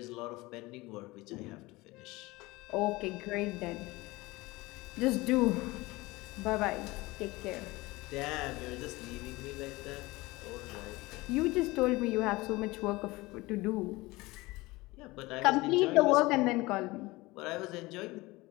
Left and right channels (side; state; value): right; quieter; 21.3 dB